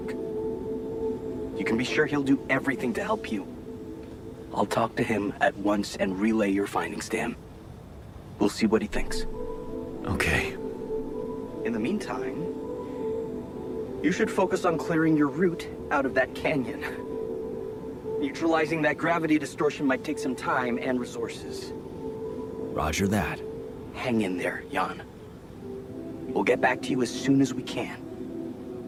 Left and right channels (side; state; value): both; identical; correlation 1.00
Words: You can be sure he'll do everything to help you. I'll talk to him at once and relay your findings to him. We'll see what he thinks. Okay. In the meantime, you should focus on clearing your route out of that canyon. Neutralizing that gravity distortion might take some time and resources. Roger that. Hang in there, Jan. We'll get back to you as soon as we can.